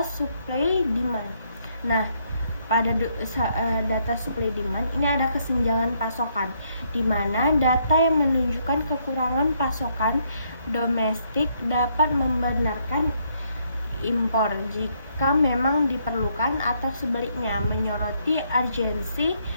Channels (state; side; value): inverted; both; correlation -0.72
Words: supply demand. Nah, pada data supply demand ini ada kesenjangan pasokan, di mana data yang menunjukkan kekurangan pasokan domestik dapat membenarkan impor jika memang diperlukan, atau sebaliknya menyoroti urgensi